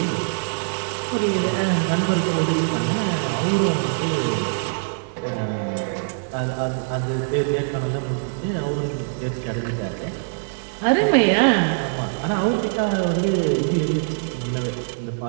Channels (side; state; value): left; silent; digital silence